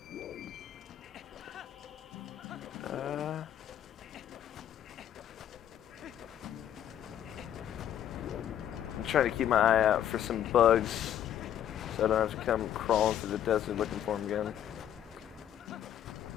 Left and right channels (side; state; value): right; quieter; 10.4 dB